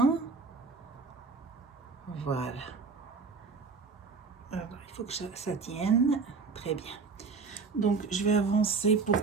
Voilà. Alors, il faut que ça tienne. Très bien. Donc, je vais avancer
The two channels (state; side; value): quieter; left; 4.6 dB